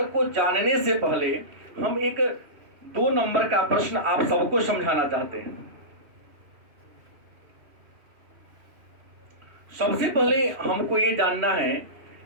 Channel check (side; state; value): left; late; 3.1 ms